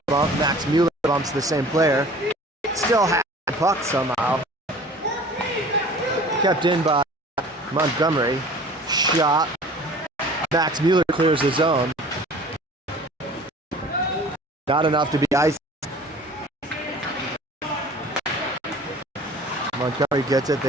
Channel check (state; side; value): normal; both; correlation 0.46